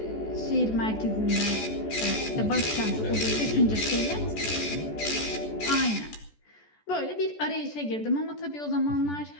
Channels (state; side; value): late; right; 14 ms